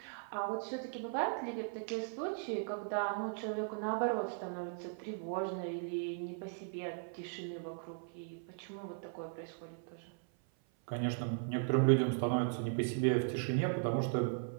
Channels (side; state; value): left; silent; 53 dB below the other